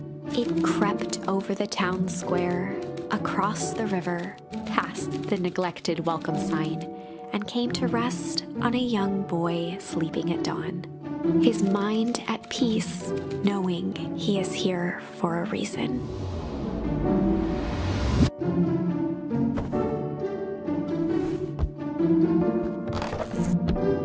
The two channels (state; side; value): identical; both; correlation 1.00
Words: It crept over the town square, across the river, past the neglected welcome sign, and came to rest on a young boy sleeping at dawn. His mind at peace, knowing he is here for a reason.